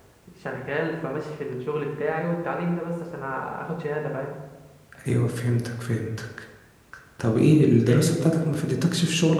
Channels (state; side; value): identical; both; correlation 1.00